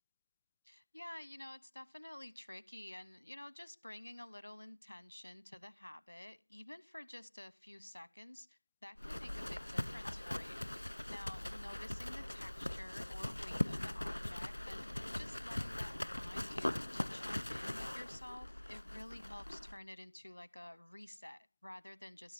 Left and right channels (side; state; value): both; inverted; correlation -1.00